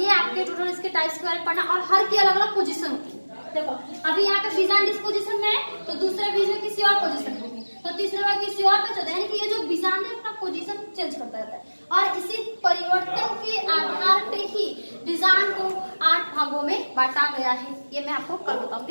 आपके टोटल इसके टाइप्स के बारे में पढ़ना, और हर की अलग अलग पोजीशन होती है। देखो अभी यहाँ पे बीजांड इस पोजीशन में है, तो दूसरे बीज में किसी और पोजीशन में, तो तीसरे में किसी और पे चलता है। यानी कि ये जो बीजांड है अपना पोजीशन चेंज करता रहता है, और इसी परिवर्तन के आधार पे ही बीजांड को 8 भागों में बांटा गया है। ये मैं आपको कल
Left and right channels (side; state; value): both; inverted; correlation -1.00